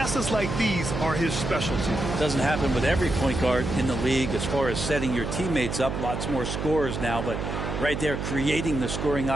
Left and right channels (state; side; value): noise; right; hum, 3 dB below the sound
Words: like these are his specialty. Doesn't happen with every point guard in the league as far as setting your teammates up. Lots more scorers now, but right there creating the scoring